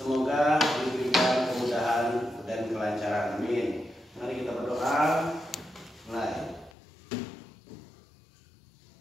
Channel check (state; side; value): drops out; right; at 6.7 s